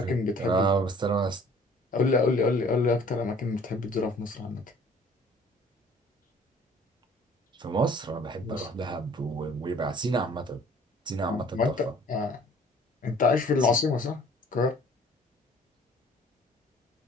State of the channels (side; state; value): both; normal; correlation 0.53